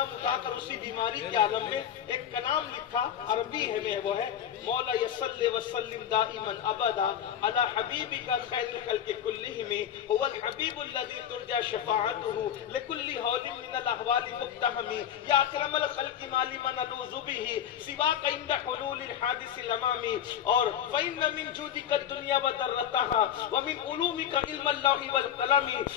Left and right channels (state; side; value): quieter; right; 9.7 dB